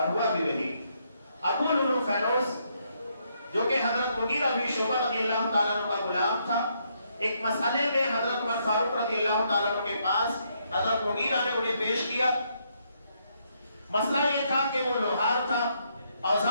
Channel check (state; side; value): inverted; both; correlation -0.75